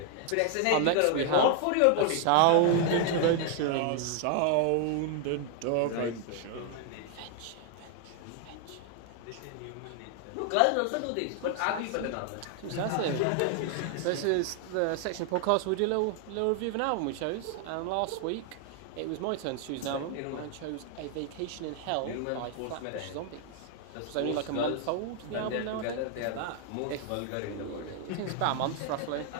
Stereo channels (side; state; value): both; different; correlation 0.00